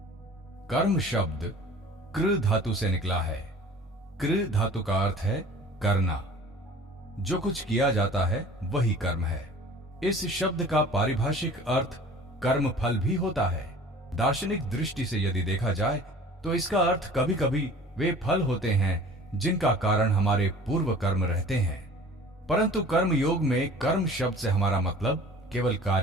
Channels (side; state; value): both; normal; correlation 0.46